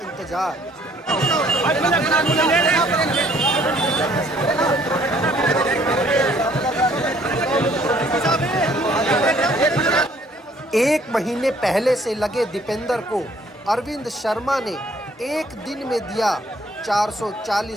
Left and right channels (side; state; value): both; normal; correlation 0.61